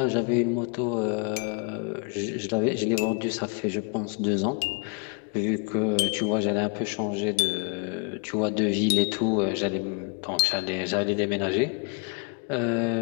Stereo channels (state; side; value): quieter; right; 36.9 dB